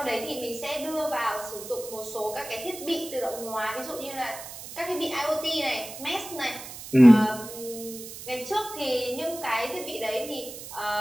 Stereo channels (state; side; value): noise; right; hiss, 12 dB below the sound